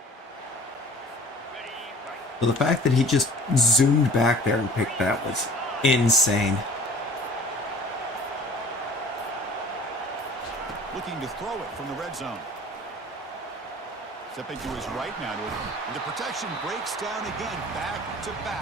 So the fact that he just zoomed back there and picked that was insane. Looking to throw it from the red zone. Stepping to his right now. And the protection breaks down again.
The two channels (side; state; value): both; normal; correlation 0.47